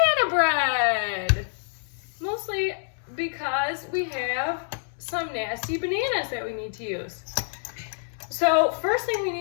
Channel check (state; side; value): silent; right; 60 dB below the other